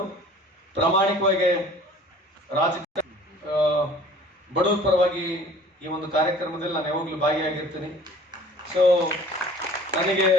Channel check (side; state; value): both; normal; correlation 0.49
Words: ಪ್ರಾಮಾಣಿಕವಾಗಿ ರಾಜಕೀಯ ಬಡವರ ಪರವಾಗಿ ಈ ಒಂದು ಕಾರ್ಯಕ್ರಮದಲ್ಲಿ ನಾನು ಯಾವಾಗಲೂ ಭಾಗಿಯಾಗಿರ್ತೀನಿ. ಸೊ ನನಗೆ